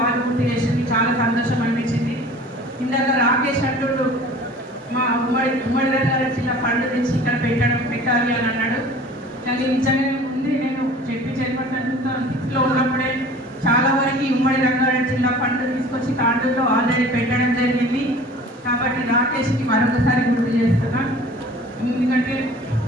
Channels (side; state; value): both; normal; correlation 0.45